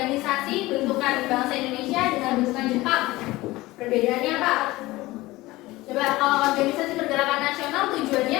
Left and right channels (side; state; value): right; quieter; 19.2 dB